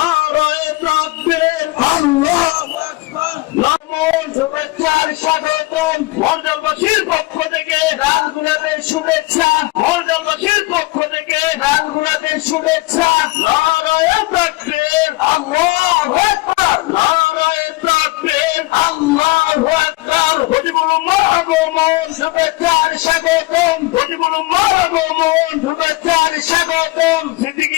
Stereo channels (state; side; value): quieter; right; 21.4 dB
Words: তাকবীর আল্লাহু আকবার নমন শুভেচ্ছার স্বাগতম মর্যাদাবাসীর পক্ষ থেকে রাজগুলাদের শুভেচ্ছা মর্যাদাবাসীর পক্ষ থেকে রাজগুলাদের শুভেচ্ছা নারায়ণ তাকবীর আল্লাহু আকবার নারায়ণ তাকবীর আল্লাহু আকবার হজিবুল উম্মাহ আগমন শুভেচ্ছার স্বাগতম হজিবুল উম্মাহ আগমন শুভেচ্ছার স্বাগতম সিদ্দিকী